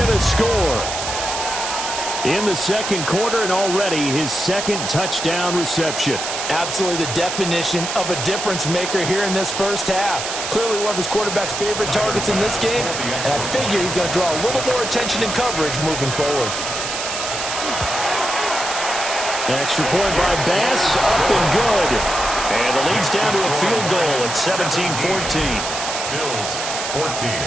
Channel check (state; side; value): noise; right; hiss, 4 dB below the sound